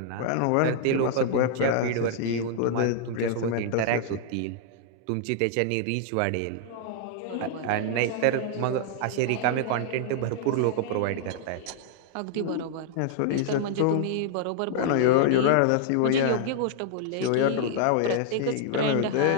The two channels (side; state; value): both; different; correlation -0.01